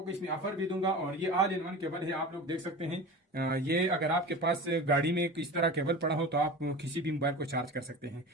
को इसमें ऑफर भी दूंगा। और ये ऑल इन वन केबल है, आप लोग देख सकते हैं। ये अगर आपके पास गाड़ी में इस तरह केबल पड़ा हो तो आप किसी भी मोबाइल को चार्ज कर सकते हैं।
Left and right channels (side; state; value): both; normal; correlation 0.33